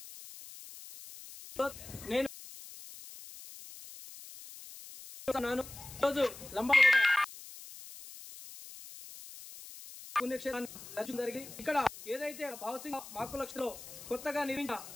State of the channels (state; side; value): noise; left; hiss, 15 dB below the sound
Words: నేను రోజు లంబాడి పుణ్యక్షేత్రాన్ని దర్శనం జరిగింది. ఇక్కడ ఏదైతే భావసింగ్ మాకులక్షలో కొత్తగా నిర్మించిన